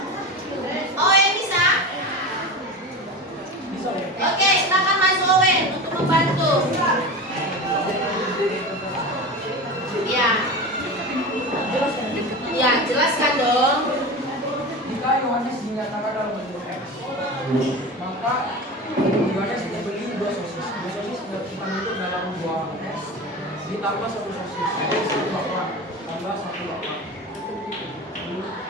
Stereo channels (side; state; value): both; normal; correlation 0.28